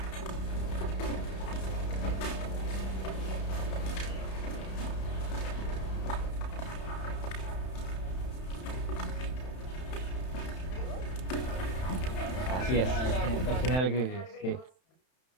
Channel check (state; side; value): late; right; 31 ms